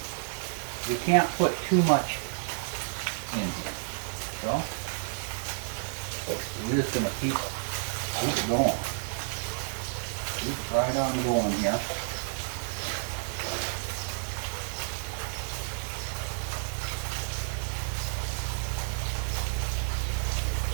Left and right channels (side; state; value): left; silent; digital silence